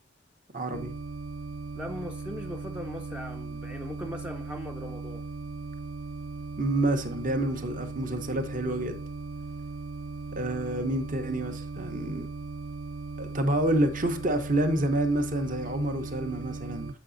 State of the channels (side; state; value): both; normal; correlation 0.58